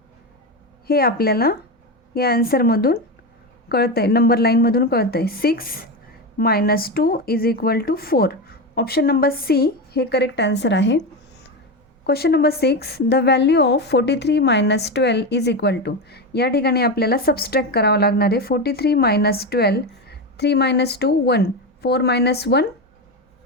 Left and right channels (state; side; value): normal; both; correlation 0.16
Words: हे आपल्याला या आन्सरमधून कळतं आहे, नंबर लाईनमधून कळतं आहे. 6 minus 2 is equal to 4. Option number C हे करेक्ट आन्सर आहे. Question number 6, the value of 43 minus 12 is equal to. या ठिकाणी आपल्याला सबस्ट्रॅक्ट करावं लागणार आहे. 43 minus 12 3 minus 2 1 4 minus 1